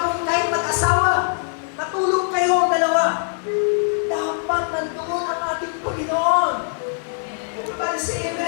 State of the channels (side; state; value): right; silent; 63 dB below the other